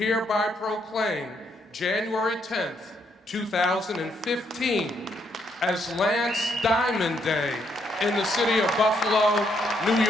proclaim January 10th, 2015 as Lance Diamond Day in the city of Buffalo, New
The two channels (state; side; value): normal; both; correlation 0.74